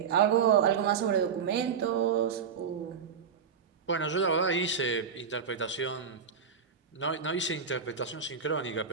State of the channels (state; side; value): quieter; left; 6.6 dB